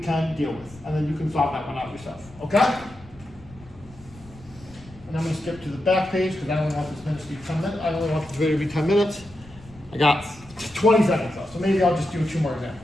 deal with. And then you can solve that one out yourself, okay? And I'm going to skip to the back page because I only want this minute to be 10 minutes. I only want this video to be 10 minutes. I got 20 seconds left, so maybe I'll just do 2 more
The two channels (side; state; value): left; noise; rumble, 22 dB below the sound